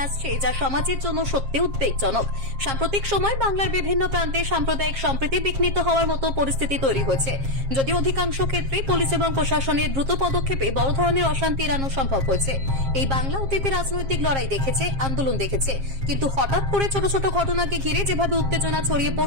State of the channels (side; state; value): left; late; 7.4 ms